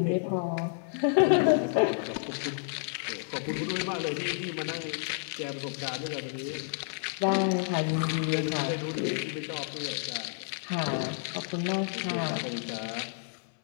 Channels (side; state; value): right; silent; 58 dB below the other